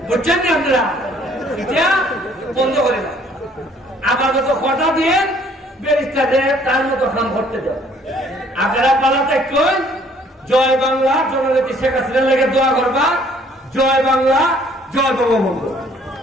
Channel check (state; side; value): normal; both; correlation 0.60